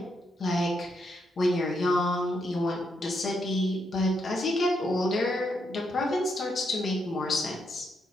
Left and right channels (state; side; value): normal; both; correlation 0.80